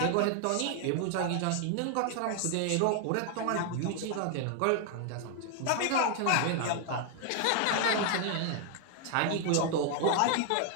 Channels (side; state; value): both; different; correlation 0.00